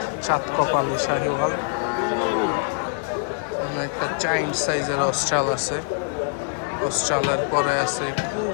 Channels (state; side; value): silent; right; 62 dB below the other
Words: চাঁদ কপালি শাহিওয়াল। একটা চাইন্ড সাইজের অস্ট্রাল আছে, অস্ট্রালের পরে আছে